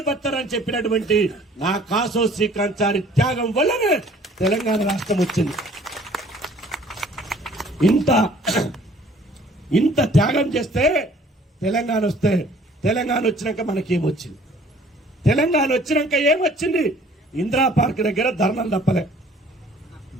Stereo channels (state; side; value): normal; both; correlation 0.55